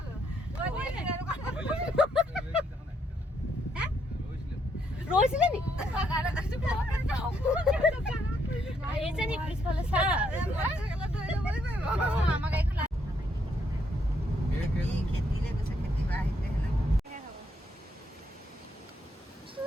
ৰৈছিলে নি? আহিছে নি পিছফালে চা?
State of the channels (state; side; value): normal; both; correlation 0.74